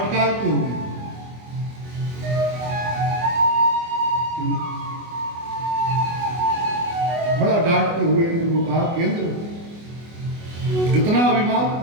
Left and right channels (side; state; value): left; late; 24 ms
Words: हुए बड़ा डांटते हुए इंद्र को कहा कि इंद्र, इतना अभिमान